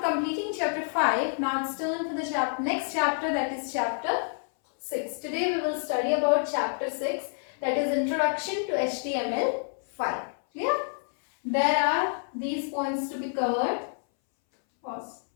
completing chapter 5, now it's turn for the next chapter, that is chapter 6. Today we will study about chapter 6, that is Introduction to HTML5. Clear? There are these points to be covered. Pause.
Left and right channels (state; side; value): silent; right; 59 dB below the other